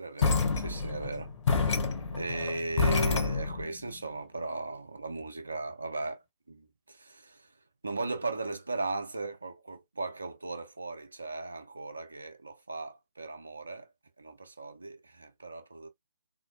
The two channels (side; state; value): both; inverted; correlation -0.70